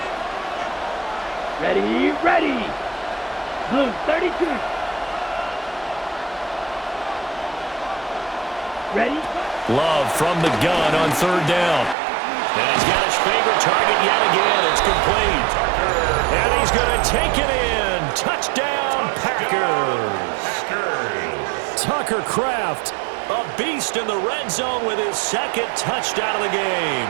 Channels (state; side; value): drops out; left; at 12.0 s